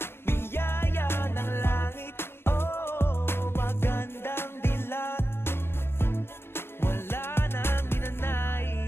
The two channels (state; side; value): late; right; 0.11 ms